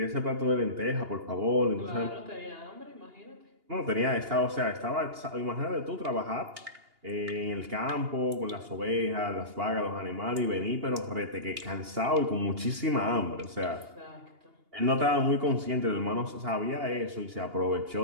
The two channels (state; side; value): late; left; 2.8 ms